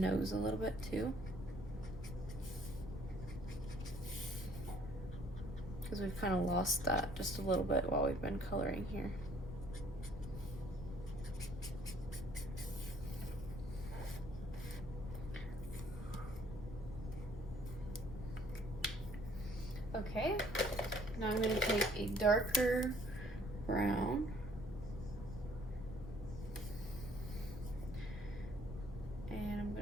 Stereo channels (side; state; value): left; noise; rumble, 9 dB below the sound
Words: a little bit too, because we've kind of lost that just a little bit while we've been coloring here. Okay, now I'm going to take a darker brown and I'm